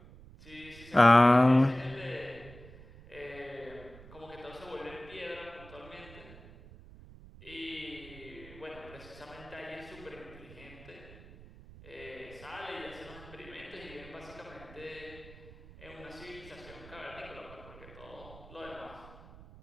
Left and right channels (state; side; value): noise; right; rumble, 18 dB below the sound